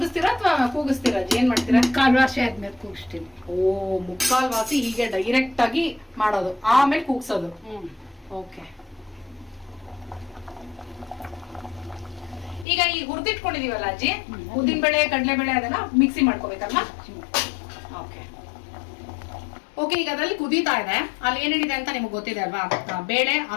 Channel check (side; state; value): right; drops out; at 12.7 s